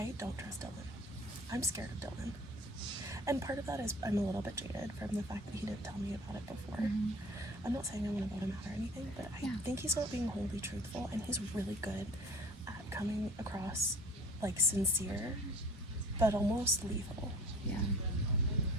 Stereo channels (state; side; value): normal; both; correlation 0.47